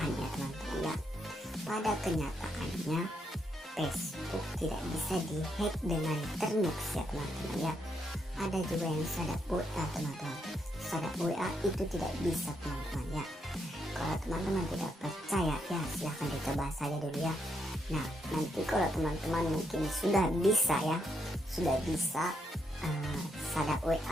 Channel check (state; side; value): normal; both; correlation 0.78